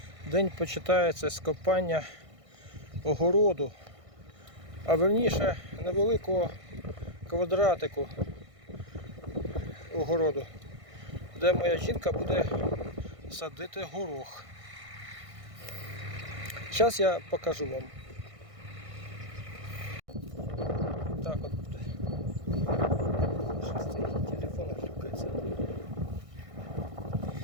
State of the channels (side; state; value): left; late; 1.6 ms